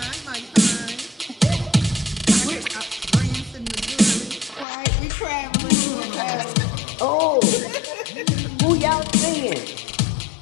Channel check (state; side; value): drops out; right; at 4.7 s